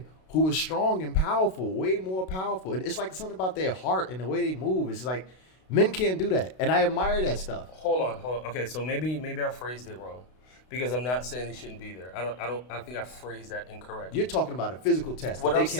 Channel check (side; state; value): right; late; 32 ms